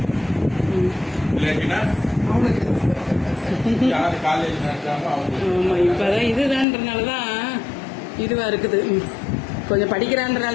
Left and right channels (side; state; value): right; drops out; at 6.7 s